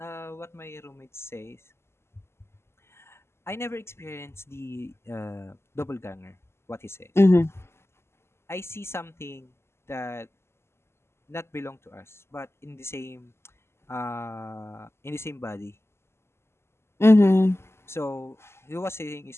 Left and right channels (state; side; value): late; right; 0.12 ms